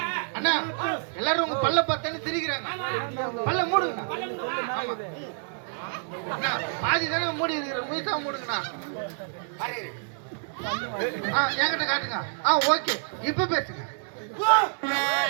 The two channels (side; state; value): left; silent; digital silence